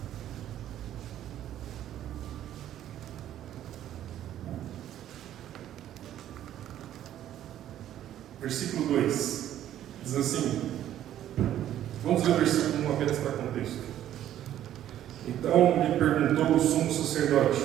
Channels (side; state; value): left; quieter; 11.8 dB